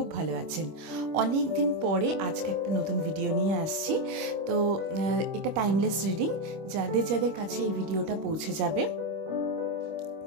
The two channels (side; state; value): left; late; 25 ms